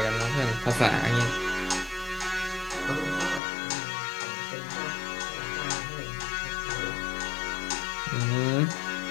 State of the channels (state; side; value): drops out; right; at 3.4 s